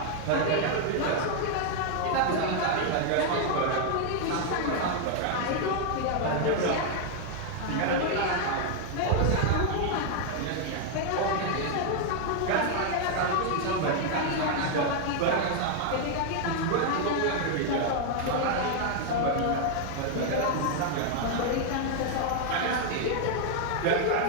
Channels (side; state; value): both; different; correlation 0.00